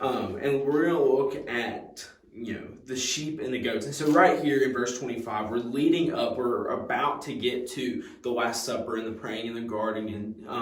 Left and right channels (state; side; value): identical; both; correlation 1.00